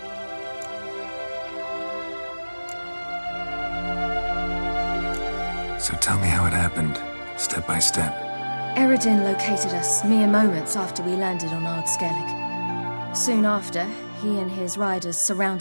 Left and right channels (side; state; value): both; inverted; correlation -1.00